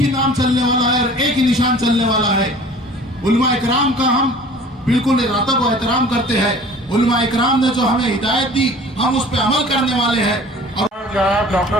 नाम चलने वाला है और एक ही निशान चलने वाला है। उलमा इकराम का हम बिल्कुल इरादा को एहतराम करते हैं। उलमा इकराम ने जो हमें हिदायत दी हम उस पर अमल करने वाले हैं। और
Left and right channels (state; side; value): normal; both; correlation 0.46